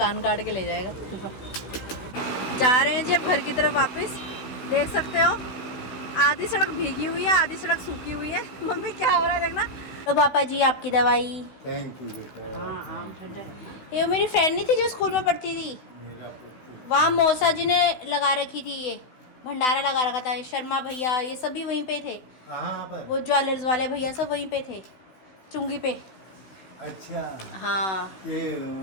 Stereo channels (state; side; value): late; right; 16 ms